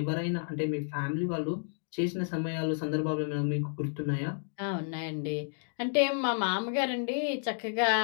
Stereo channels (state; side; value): silent; right; digital silence